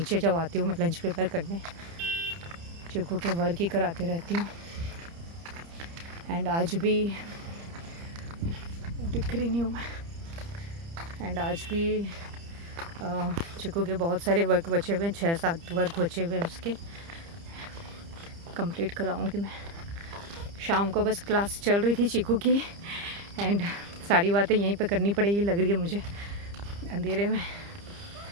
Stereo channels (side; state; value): left; late; 30 ms